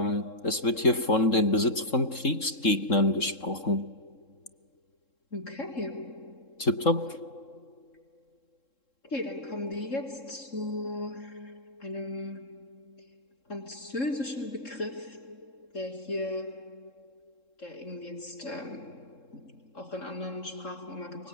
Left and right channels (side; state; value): right; late; 3.7 ms